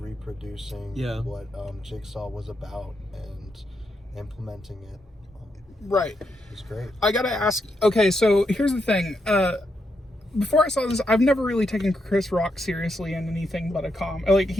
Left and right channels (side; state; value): both; normal; correlation 0.81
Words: what Jigsaw was about and implementing it. Right. It's great. I gotta ask. Okay, so here's the thing. Before I saw this, I've never really taken Chris Rock seriously in anything but like,